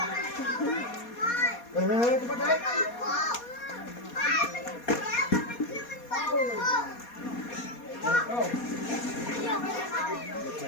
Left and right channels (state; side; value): late; right; 4.2 ms